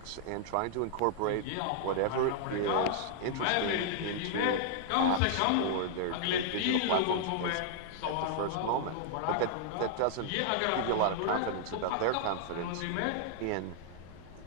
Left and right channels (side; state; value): both; different; correlation -0.01